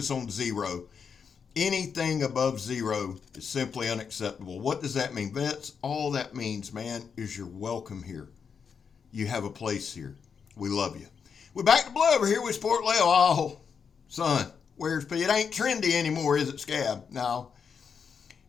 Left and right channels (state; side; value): quieter; right; 6.4 dB